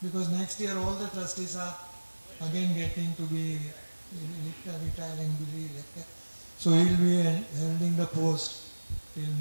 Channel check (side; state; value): both; inverted; correlation -1.00